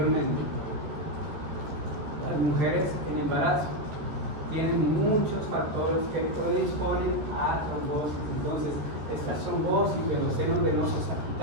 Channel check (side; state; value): left; late; 14 ms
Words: Las mujeres en embarazo tienen muchos factores que predisponen a trombosis. Entonces, estas trombosis de los senos venosos